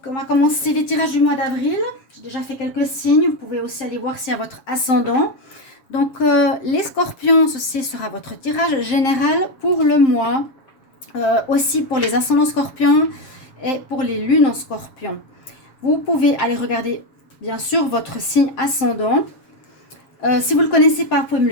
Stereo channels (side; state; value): right; late; 7.2 ms